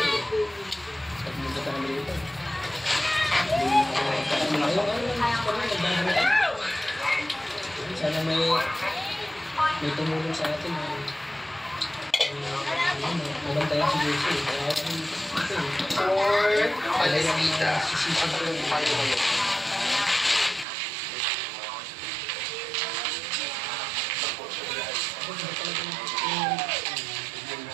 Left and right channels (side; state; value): left; drops out; at 20.7 s